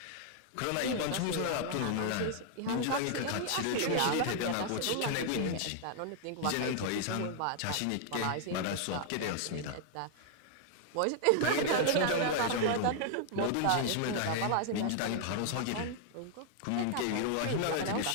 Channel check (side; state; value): both; different; correlation 0.00